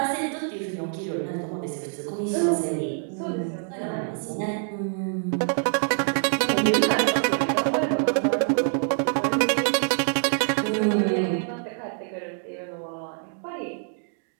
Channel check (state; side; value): silent; left; 61 dB below the other